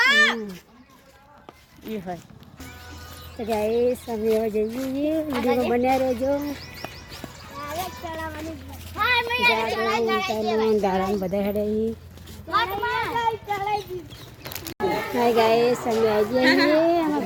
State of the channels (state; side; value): identical; both; correlation 1.00